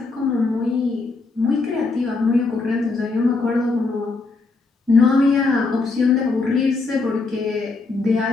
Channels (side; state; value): right; quieter; 3.8 dB